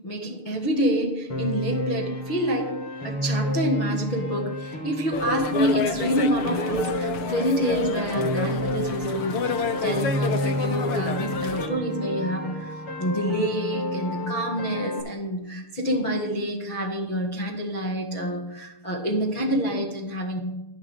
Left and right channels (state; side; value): late; right; 6.7 ms